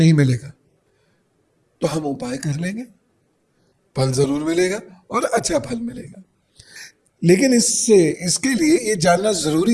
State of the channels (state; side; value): identical; both; correlation 1.00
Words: मिलेगा। तो हम उपाय कर लेंगे, फल जरूर मिलेगा और अच्छा फल मिलेगा। लेकिन इसके लिए ये जानना